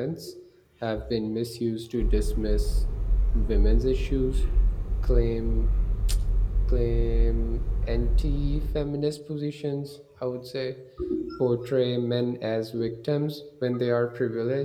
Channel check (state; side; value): identical; both; correlation 1.00